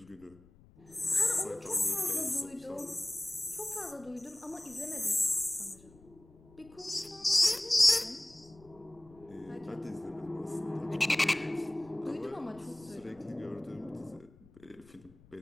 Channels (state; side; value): noise; left; rumble, 25 dB below the sound